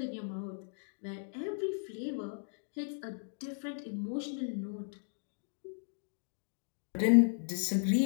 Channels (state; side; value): silent; right; digital silence